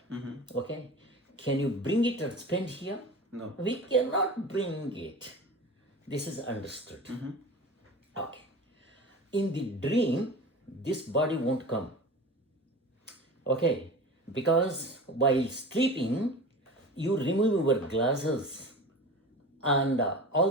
Okay. Can you bring it and spend here? No. We cannot bring it. This is understood. Okay. In the dream, this body won't come. Okay. Because while sleeping, you remove your glasses and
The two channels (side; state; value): both; normal; correlation 0.34